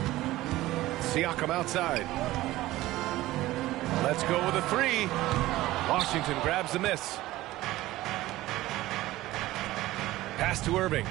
Siakam outside. Let's go with a three. Washington grabs the miss. Pass to Irving.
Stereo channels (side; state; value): left; quieter; 16.9 dB